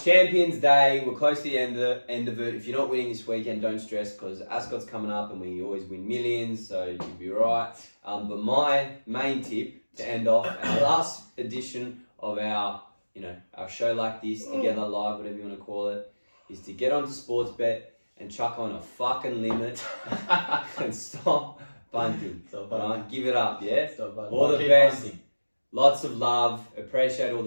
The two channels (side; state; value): both; inverted; correlation -1.00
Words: Champions Day. We're close to the end of it. If you're not winning this weekend, don't stress because ASCOT's coming up and we always win millions, so you'll be right. But my main tip to end off our last edition of our show like this, Together Live, whatever you want to call it, is to get onto Sportsbet and chuck on a fucking limit and stop bunting. Right? Give it up, yeah? All the best. Bunting. Lots of love. Appreciate all